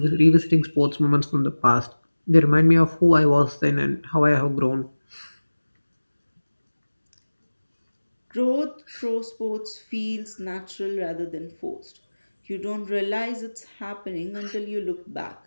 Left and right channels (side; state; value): both; inverted; correlation -1.00